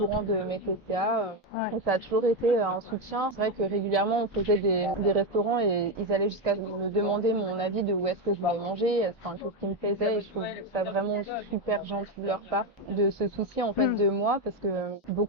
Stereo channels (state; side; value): normal; both; correlation 0.09